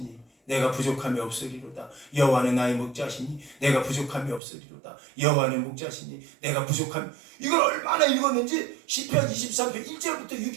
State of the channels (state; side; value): drops out; left; at 4.4 s